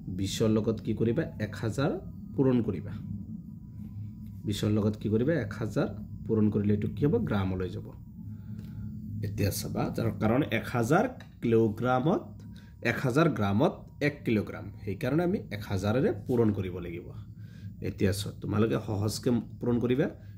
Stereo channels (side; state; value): both; identical; correlation 1.00